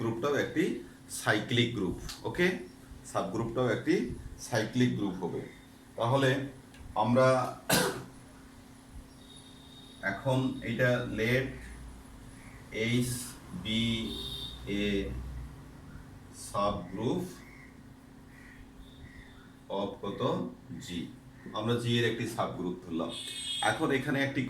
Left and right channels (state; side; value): identical; both; correlation 1.00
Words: একটি সাইক্লিক গ্রুপ। ওকে, সাবগ্রুপটাও একটি সাইক্লিক গ্রুপ হবে। তাহলে আমরা এখন এটা let H be a subgroup of কত জি, আমরা জি এর একটি সাবগ্রুপ ধরলাম। এখন এখানে একটি